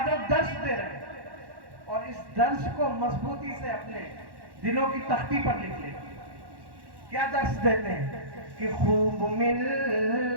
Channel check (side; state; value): left; late; 1.1 ms